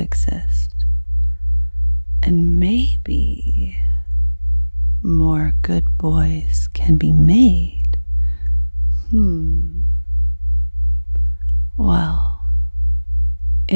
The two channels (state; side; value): inverted; both; correlation -1.00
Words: and maybe more good boys can be made. Well,